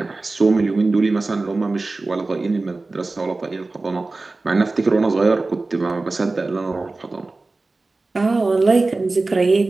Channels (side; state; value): left; quieter; 3.4 dB